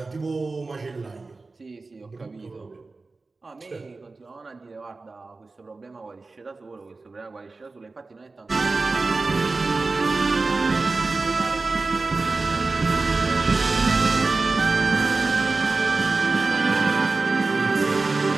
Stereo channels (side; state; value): left; quieter; 3.7 dB